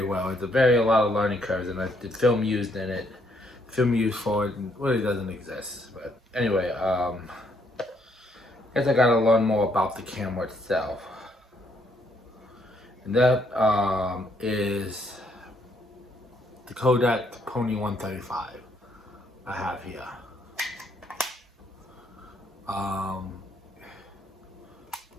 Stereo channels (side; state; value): both; normal; correlation 0.71